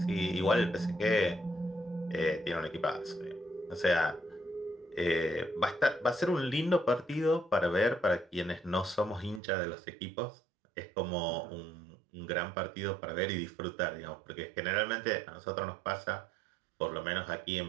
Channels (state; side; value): drops out; left; at 9.4 s